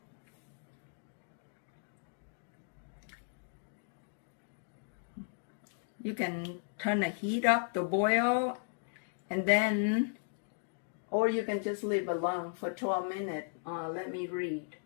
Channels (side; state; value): right; silent; digital silence